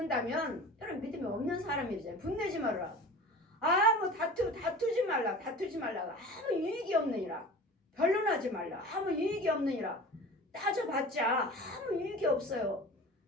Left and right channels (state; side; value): normal; both; correlation 0.38